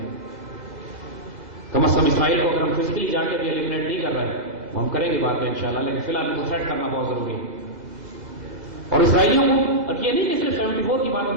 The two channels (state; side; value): late; left; 2.0 ms